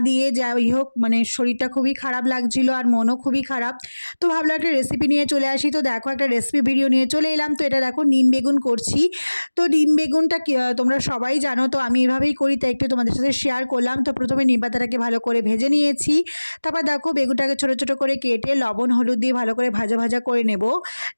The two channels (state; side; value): inverted; both; correlation -1.00